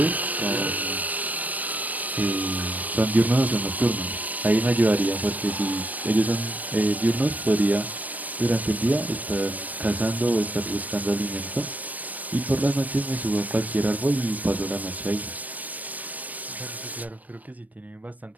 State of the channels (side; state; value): left; late; 0.076 ms